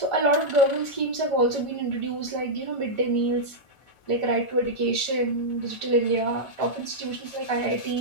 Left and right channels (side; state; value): right; late; 1.4 ms